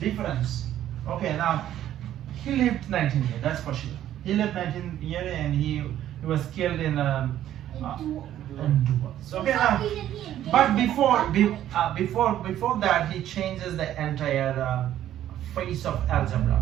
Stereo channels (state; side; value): quieter; left; 11.9 dB